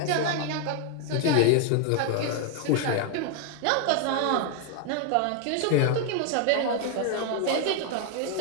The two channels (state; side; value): different; both; correlation 0.00